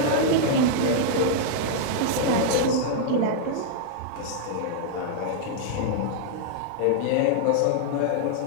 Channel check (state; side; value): different; both; correlation -0.01